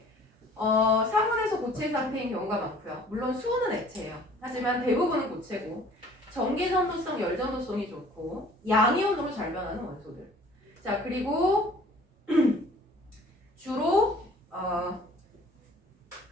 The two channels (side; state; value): both; normal; correlation 0.52